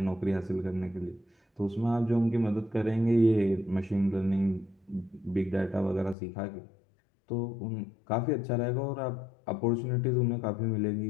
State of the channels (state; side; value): drops out; right; at 6.2 s